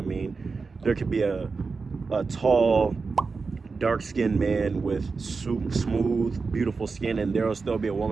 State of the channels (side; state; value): left; quieter; 4.5 dB